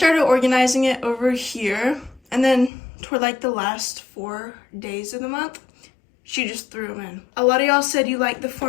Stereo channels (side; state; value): right; drops out; at 2.7 s